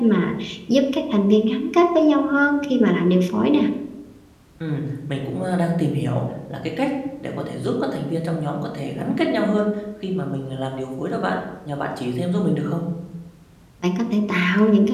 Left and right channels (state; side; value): identical; both; correlation 1.00